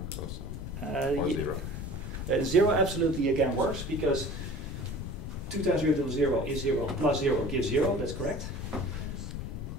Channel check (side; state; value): left; noise; rumble, 7 dB below the sound